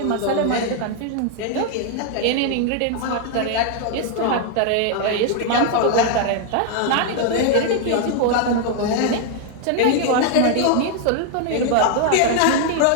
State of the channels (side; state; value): both; different; correlation 0.00